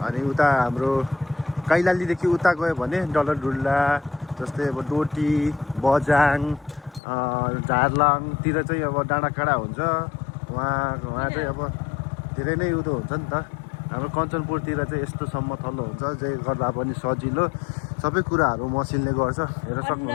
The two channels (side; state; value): right; drops out; at 7.0 s